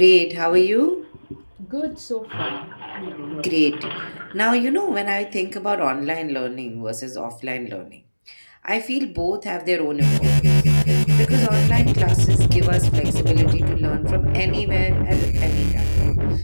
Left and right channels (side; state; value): both; inverted; correlation -1.00